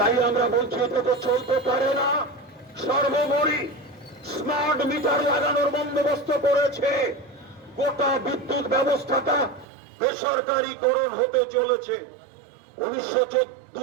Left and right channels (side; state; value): left; drops out; at 9.7 s